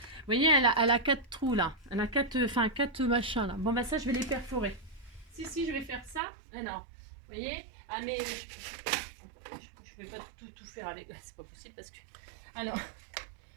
voyez, elle a 4 trous, là. Elle a 4 machins, là. Bon, bah ça, je vais les perforer. Si, je vais faire ça. Alors, vous voyez. Ah mais je vais pas tout faire avec. C'est pas possible parce que. Alors,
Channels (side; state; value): left; drops out; at 6.2 s